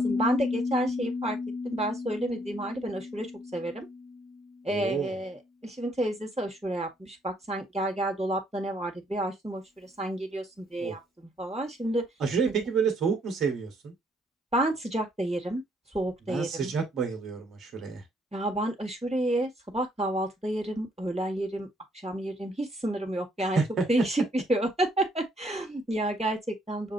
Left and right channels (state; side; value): normal; both; correlation 0.69